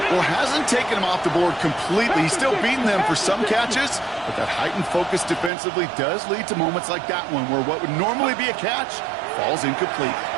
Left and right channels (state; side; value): drops out; left; at 5.5 s